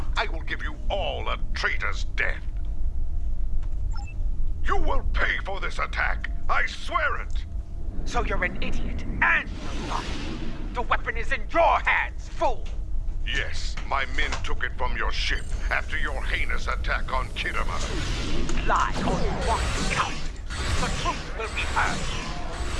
I will give you all a traitor's death. You will pay for this attack. I swear it. So you're an idiot and a liar. The weapon is in your hands, fool! Yes, my men took it from your ship after your heinous attack on Khitomer. Lie all you want, coward. The truth will be heard.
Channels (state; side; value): identical; both; correlation 1.00